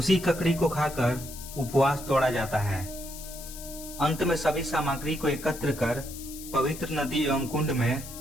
ककड़ी को खाकर उपवास तोड़ा जाता है। अंत में सभी सामग्री को एकत्र कर पवित्र नदी एवं कुंड में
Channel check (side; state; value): left; noise; hiss, 13 dB below the sound